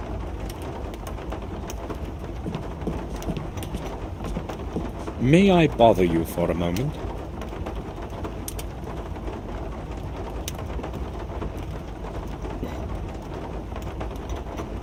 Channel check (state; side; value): identical; both; correlation 1.00